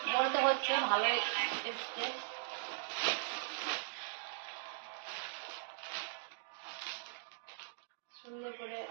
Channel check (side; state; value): left; silent; digital silence